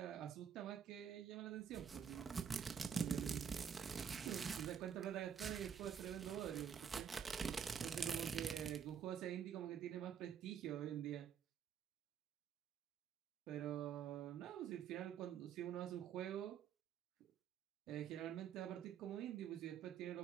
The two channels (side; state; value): left; quieter; 7.9 dB